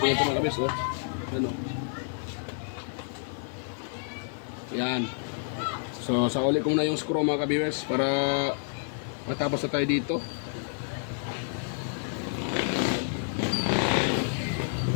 ito mga kabis, oh. Yan, oh. Yan. So, sauli ko muna yung screw mga kabis para matapos na tayo dito.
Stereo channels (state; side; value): silent; right; digital silence